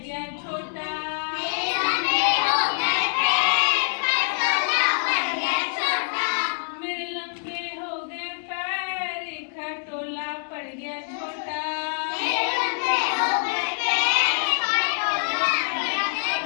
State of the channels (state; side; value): silent; right; digital silence